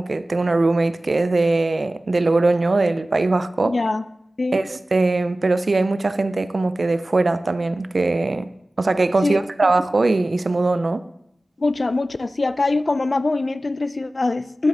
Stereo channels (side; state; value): both; normal; correlation 0.96